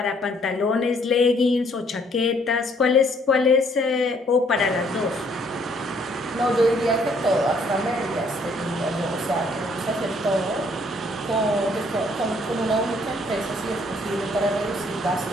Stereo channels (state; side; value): normal; both; correlation 0.64